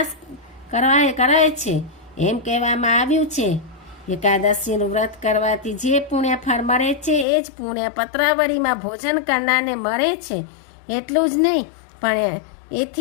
કરાય છે. એમ કહેવામાં આવ્યું છે એકાદશીનું વ્રત કરવાથી જે પુણ્ય ફળ મળે છે એ જ પુણ્ય પત્રાવળીમાં ભોજન કરનારને મળે છે. એટલું જ નહીં પણ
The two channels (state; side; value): drops out; right; at 7.2 s